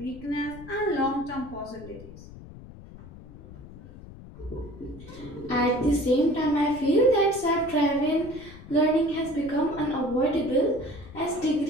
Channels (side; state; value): left; noise; rumble, 17 dB below the sound